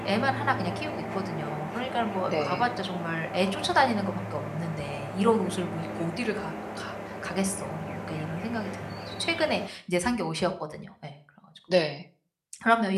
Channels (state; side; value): identical; both; correlation 1.00